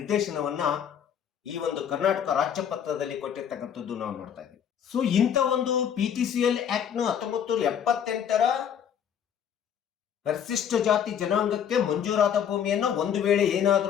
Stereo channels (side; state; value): right; quieter; 8.6 dB